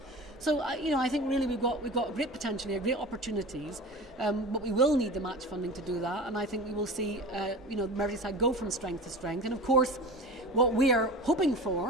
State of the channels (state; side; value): normal; both; correlation 0.34